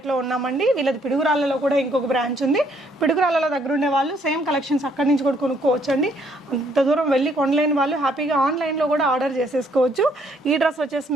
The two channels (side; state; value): both; normal; correlation 0.67